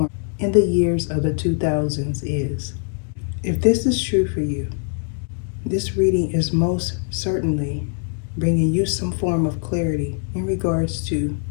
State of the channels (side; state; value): right; silent; digital silence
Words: in the years of the 2000s is. If this is true for you, this reading is most certainly bringing you some form of clarity in regards to